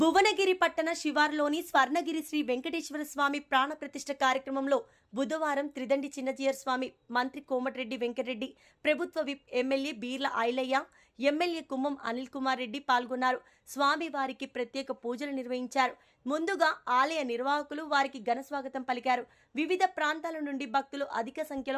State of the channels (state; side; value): identical; both; correlation 1.00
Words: భువనగిరి పట్టణ శివార్లోని స్వర్ణగిరి శ్రీ వెంకటేశ్వర స్వామి ప్రాణ ప్రతిష్ఠ కార్యక్రమంలో బుధవారం త్రిదండి చిన్నజీయర్ స్వామి, మంత్రి కోమటిరెడ్డి వెంకటరెడ్డి, ప్రభుత్వ whip MLA Beerla Ailaiah, MLA Kumbam Anil Kumar Reddy పాల్గొన్నారు. స్వామి వారికి ప్రత్యేక పూజలు నిర్వహించారు. ముందుగా ఆలయ నిర్వాహకులు వారికి ఘన స్వాగతం పలికారు. వివిధ ప్రాంతాల నుండి భక్తులు అధిక